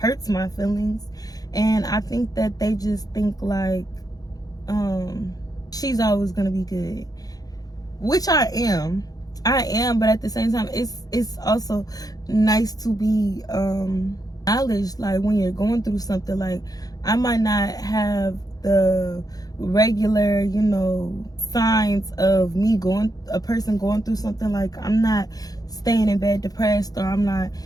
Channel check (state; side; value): late; right; 0.18 ms